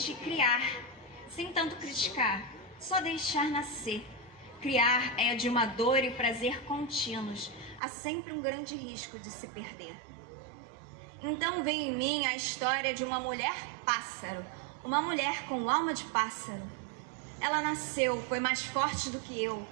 criar, sem tanto criticar, só deixar nascer. Criar é de uma dor e prazer contínuos. Há sempre um grande risco de se perder. Então veio em mim a história de uma mulher pássaro, uma mulher com alma de pássaro. Ela nasceu, foi mais forte do que eu.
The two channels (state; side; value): drops out; left; at 7.8 s